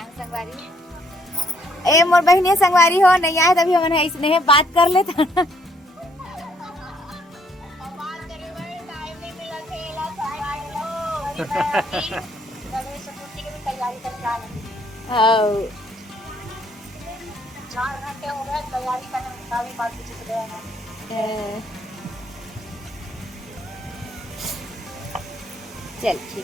संगवारी। ए मोर बहनी संगवारी हो नहीं आए तभी हमन इसने बात कर लेता। चल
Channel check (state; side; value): normal; both; correlation 0.68